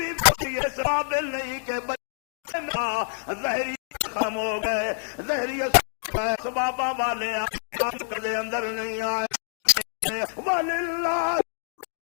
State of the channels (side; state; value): right; silent; digital silence